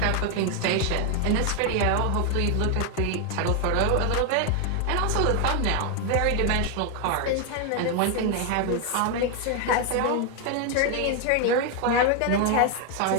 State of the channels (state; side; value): different; both; correlation 0.01